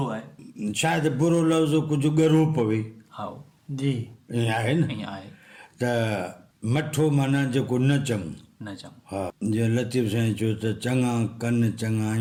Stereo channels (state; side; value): identical; both; correlation 1.00